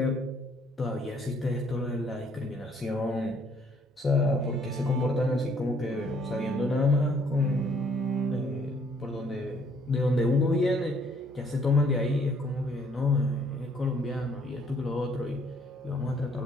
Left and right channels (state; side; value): normal; both; correlation 0.64